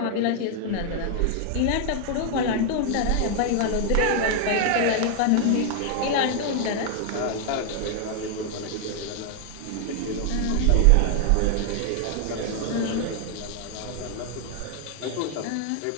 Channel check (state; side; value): different; both; correlation 0.00